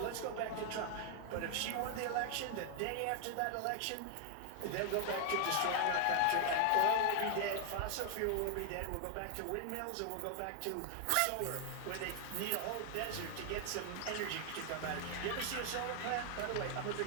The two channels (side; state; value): both; different; correlation 0.00